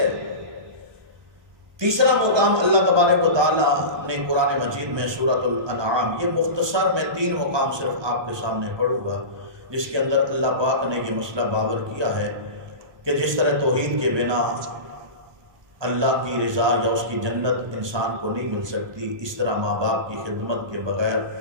تیسرا مقام اللہ تبارک و تعالیٰ نے قرآن مجید میں سورۃ الانعام، یہ مختصر میں 3 مقام صرف آپ کے سامنے پڑھوں گا، جس کے اندر اللہ پاک نے یہ مسئلہ باور کیا ہے کہ جس طرح توحید کے بنا اللہ کی رضا یا اس کی جنت انسان کو نہیں مل سکتی، اس طرح ماں باپ کی خدمت کے بغیر،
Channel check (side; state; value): left; late; 1.2 ms